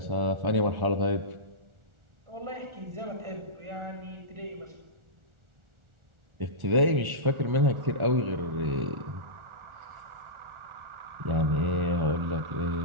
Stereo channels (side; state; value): left; late; 1.4 ms